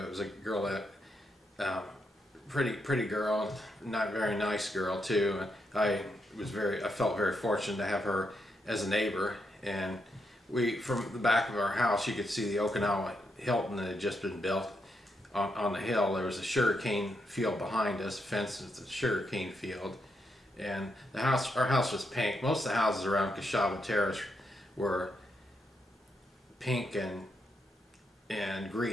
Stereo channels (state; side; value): normal; both; correlation 0.81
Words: was a girl that pretty girl, not very nice girl too. I felt very fortunate to have her as a neighbor, and from the back of our house you could see the Okinawa Hilton that had just been built on the hill. There was a sugarcane field behind us, fenced with the sugarcane field, and our house was pink. Most of the houses around Kashaba Terrace were pink and